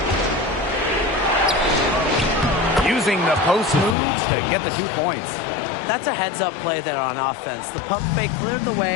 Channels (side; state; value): right; drops out; at 4.0 s